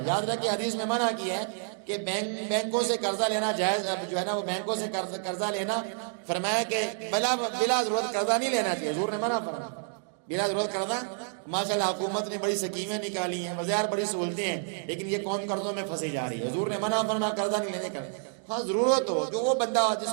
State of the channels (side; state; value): left; silent; digital silence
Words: یاد رکھیں حدیث میں منع کیا ہے کہ بینکوں سے قرضہ لینا جائز جو ہے نا، وہ بینکوں سے قرضہ لینا، فرمایا کہ بلا ضرورت قرضہ نہیں لینا چاہیے، حضور نے منع فرمایا بلا ضرورت قرضہ۔ ماشاءاللہ حکومت نے بڑی سکیمیں نکالی ہیں، بازار بڑی سہولتیں ہیں، لیکن یہ قوم قرضوں میں پھنسی جا رہی ہے۔ حضور نے منع فرمایا قرضہ نہیں لینے کا۔ ہاں ضرورت ہو، جو وہ بندہ جس